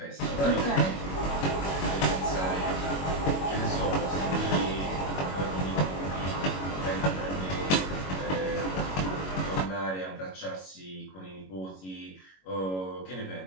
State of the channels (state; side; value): late; right; 21 ms